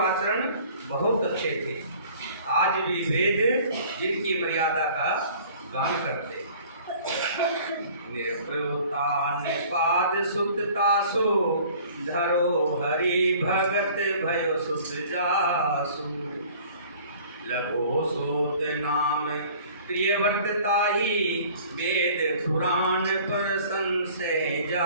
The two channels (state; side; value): inverted; both; correlation -0.50